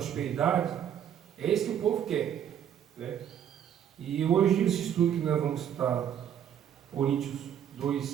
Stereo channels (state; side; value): quieter; left; 9.4 dB